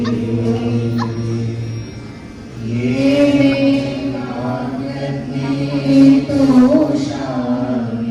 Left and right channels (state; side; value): identical; both; correlation 1.00